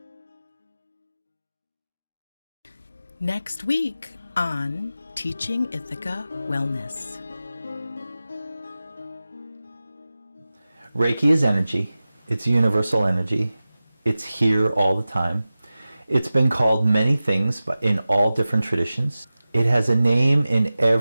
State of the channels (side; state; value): both; inverted; correlation -0.96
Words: Next week on Teaching Ithaca Wellness. Reiki is energy. It's universal energy. It's here all the time. It's been called many things, but in all different traditions. It has a name in